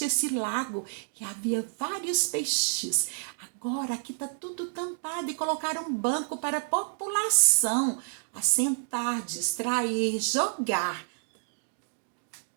esse lago, que havia vários peixes. Agora aqui está tudo tampado e colocaram um banco para a população assentar, distrair, jogar.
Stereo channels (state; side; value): silent; left; digital silence